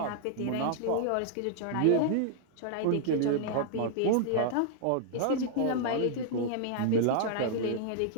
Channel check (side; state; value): both; different; correlation -0.01